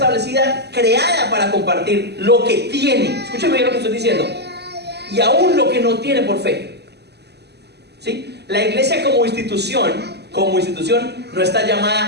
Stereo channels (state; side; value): late; left; 0.49 ms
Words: creada para compartir lo que tiene. Escúcheme bien lo que estoy diciendo. Y aún lo que no tiene por fe. ¿Sí? La iglesia como institución no está